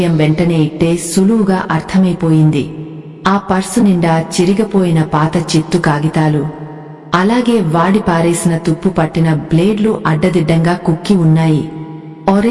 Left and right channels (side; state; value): both; identical; correlation 1.00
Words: వెంటనే ఇట్టే సులువుగా అర్థమైపోయింది. ఆ పర్సు నిండా చిరిగిపోయిన పాత చిత్తు కాగితాలు, అలాగే వాడి పారేసిన తుప్పు పట్టిన బ్లేడ్లు అడ్డదిడ్డంగా కుక్కి ఉన్నాయి.